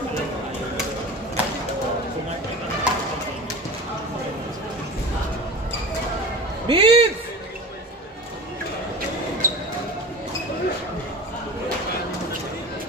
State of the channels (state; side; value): normal; both; correlation 0.33